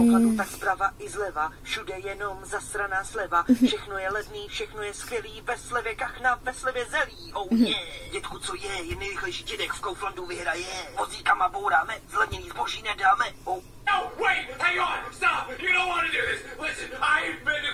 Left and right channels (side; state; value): both; identical; correlation 1.00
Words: tak zprava i zleva, všude jenom zasraná sleva. Všechno je levný, všechno je skvělý, ve slevě kachna, ve slevě zelí. Oh yeah, dětku, co je nejrychlejší dědek v Kauflandu vyhraje. Vozíkama bouráme, zlevněný zboží nedáme. Oh. No, wait, hang on, stop, you don't want to do this. Listen, I've been a